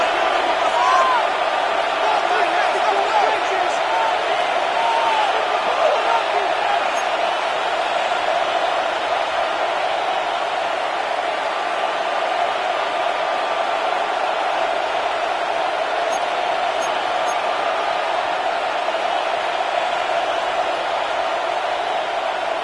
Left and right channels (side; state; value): both; identical; correlation 1.00